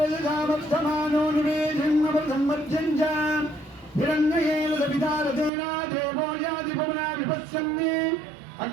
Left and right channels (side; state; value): left; drops out; at 5.5 s